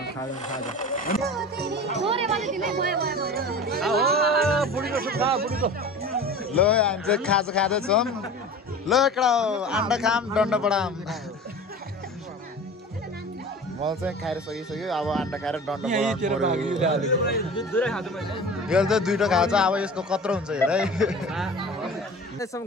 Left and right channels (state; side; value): normal; both; correlation 0.37